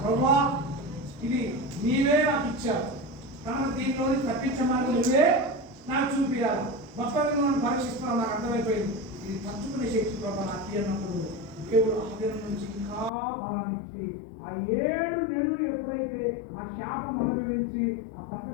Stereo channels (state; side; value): drops out; right; at 13.1 s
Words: ప్రభువా, ఇది నీవే నాకు ఇచ్చావు కనుక దీనిలోని తప్పించమని నువ్వే నాకు చూపించాలి. మొత్తం నన్ను పరీక్షిస్తున్నావు, నాకు అర్థమైపోయింది. ఇది తచ్చుకునే శక్తి ప్రభా నాకు అన్నప్పుడు దేవుడు ఆ దినం నుంచి ఇంకా బలాన్ని ఇచ్చి ఆ 7 నెలలు ఎప్పుడైతే ఆ శాపం అనుభవించి ఆ